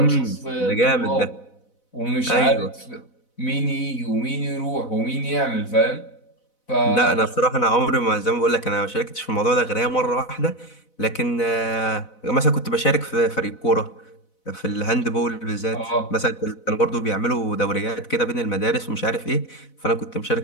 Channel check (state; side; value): late; right; 4.0 ms